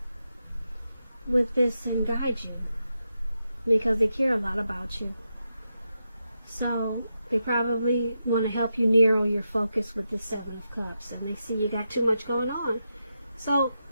with this and guide you, because they care a lot about you. So they probably want to help you narrow your focus with the Seven of Cups, and they see you got too much going on. So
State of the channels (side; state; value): both; inverted; correlation -0.87